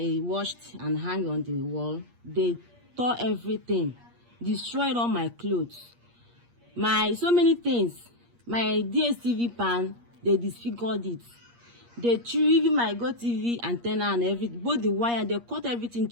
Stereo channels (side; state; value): left; late; 8.5 ms